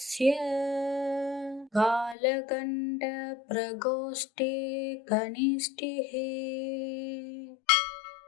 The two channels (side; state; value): right; drops out; at 2.1 s